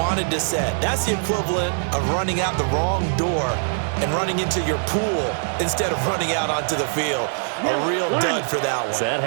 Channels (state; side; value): silent; left; digital silence